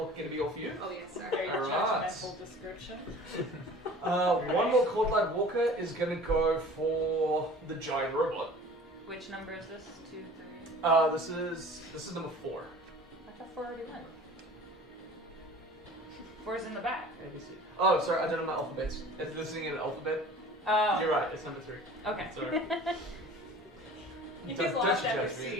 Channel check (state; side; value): normal; both; correlation 0.44